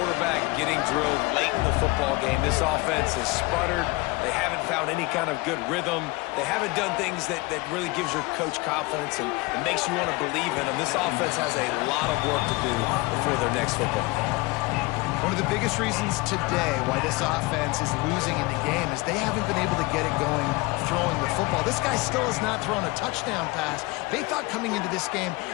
getting drilled late in the football game. This offense has sputtered. They haven't found any kind of good rhythm. They haven't done things that really gives your coach confidence and makes you want to believe in them. This offense has a lot of work to do before their next football game. One of the biggest reasons today why this offense is losing in the game is they haven't been able to get it going throwing the football. This guy still has not thrown a touchdown pass. They thought coming into this game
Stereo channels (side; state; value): right; quieter; 23.7 dB